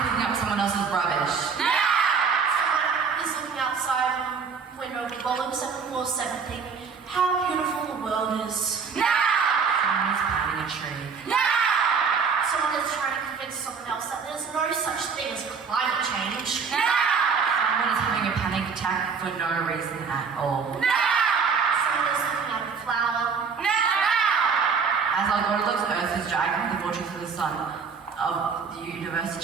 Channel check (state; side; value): quieter; left; 5.7 dB